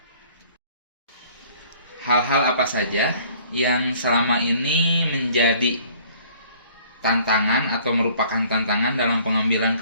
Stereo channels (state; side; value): inverted; both; correlation -0.55